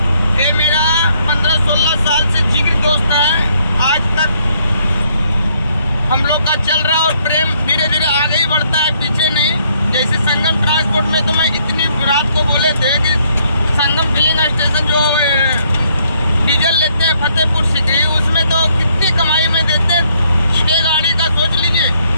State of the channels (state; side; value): inverted; both; correlation -0.69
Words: ये मेरा 15-16 साल से जिगरी दोस्त है। आज तक हम लोग का चल रहा और प्रेम धीरे धीरे आगे ही बढ़ता है, पीछे नहीं। जैसे संगम ट्रांसपोर्ट में तो मैं इतनी रात को बोले थे कि संगम फिलिंग स्टेशन जो डीजल लेते हैं फतेहपुर सिकरी, उसमें तो कितनी कमाई में देते हैं। 6 गाड़ी का सोच लीजिए,